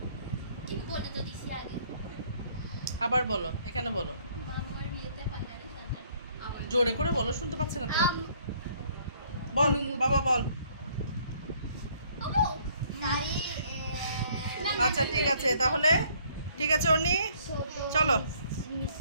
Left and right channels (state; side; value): inverted; both; correlation -0.62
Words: ঠিক বলে তো দিছি আগে। আবার বলো, এখানে বলো। মামার বিয়েতে পাল্লারে সাজাই। জোরে করে বলো, শুনতে পাচ্ছে না তো। বল বাবা বল। ওমো সারি আচ্ছা ঠিক আছে, তাহলে ঠিক আছে অনি, চলো